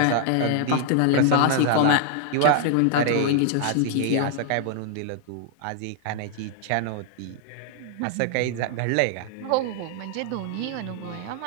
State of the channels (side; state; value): both; different; correlation 0.00